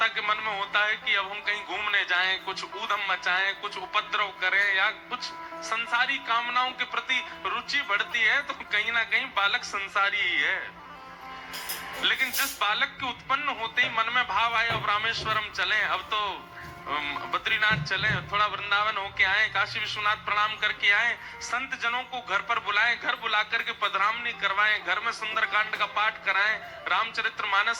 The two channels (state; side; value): identical; both; correlation 1.00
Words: के मन में होता है कि अब हम कहीं घूमने जाएं, कुछ ऊधम मचाएं, कुछ उपद्रव करें या कुछ संसारी कामनाओं के प्रति रुचि बढ़ती है तो कहीं ना कहीं बालक संसारी ही है। लेकिन जिस बालक के उत्पन्न होते ही मन में भाव आए अब रामेश्वरम चलें, अब तो बद्रीनाथ चलें, थोड़ा वृंदावन होके आए, काशी विश्वनाथ प्रणाम करके आए, संत जनों को घर पर बुलाएं, घर बुला करके पधरामनी करवाएं, घर में सुंदरकांड का पाठ कराएं,